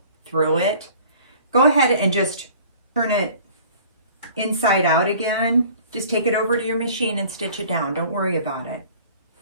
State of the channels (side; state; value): both; inverted; correlation -0.49